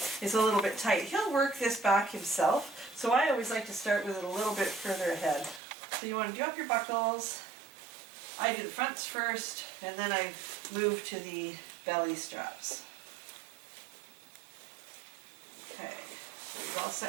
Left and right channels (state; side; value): drops out; left; at 5.6 s